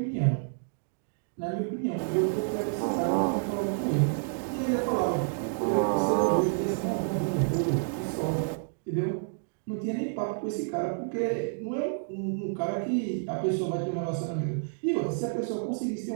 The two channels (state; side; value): silent; left; digital silence